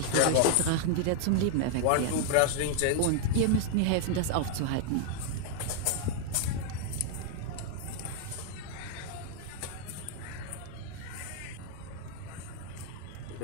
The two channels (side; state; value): both; different; correlation 0.00